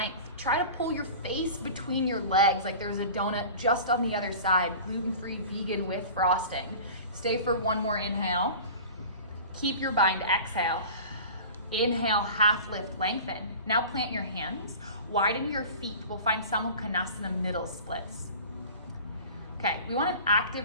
Try to pull your face between your legs like there's a donut just on the other side, gluten-free, vegan with frosting. Stay for one more inhale. Keep your bind, exhale. Inhale, half lift, lengthen. Now plant your hands, widen your feet. We'll find Samukhanasana middle splits. Okay, we want an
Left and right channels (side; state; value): both; inverted; correlation -0.38